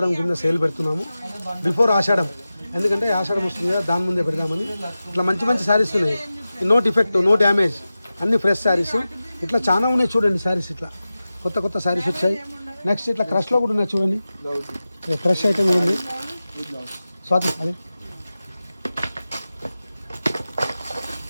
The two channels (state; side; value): inverted; both; correlation -0.94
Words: కింద సేల్ పెడుతున్నాము, బిఫోర్ ఆషాఢం, ఎందుకంటే ఆషాఢం వస్తుంది కదా, దాని ముందే పెడదామని. ఇట్లా మంచి మంచి శారీస్ ఉన్నాయి, నో డిఫెక్ట్, నో డ్యామేజ్, అన్ని ఫ్రెష్ శారీస్. ఇట్లా చాలా ఉన్నాయి చూడండి శారీస్. ఇట్లా కొత్త కొత్త శారీస్ వచ్చాయి. నెక్స్ట్ ఇట్లా క్రష్లో కూడా ఉన్నాయి చూడండి, ఫ్రెష్ ఐటమ్ కూడా ఉంది. స్వాతి అదే